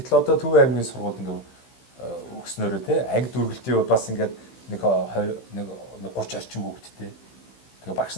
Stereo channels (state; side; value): late; right; 15 ms